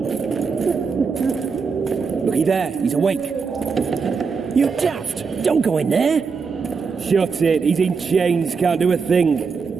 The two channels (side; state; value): left; quieter; 5.2 dB